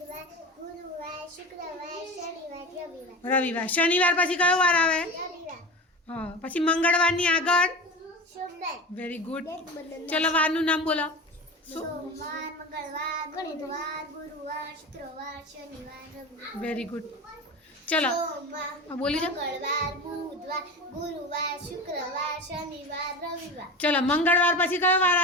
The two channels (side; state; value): both; normal; correlation 0.29